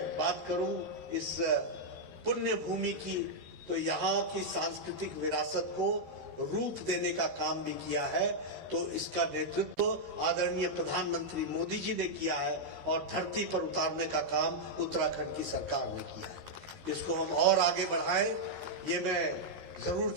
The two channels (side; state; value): left; late; 13 ms